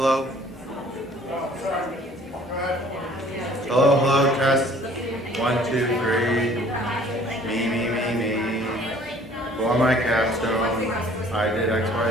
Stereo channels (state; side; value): normal; both; correlation 0.54